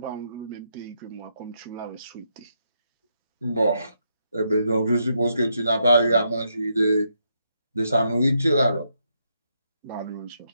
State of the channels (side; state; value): both; inverted; correlation -0.79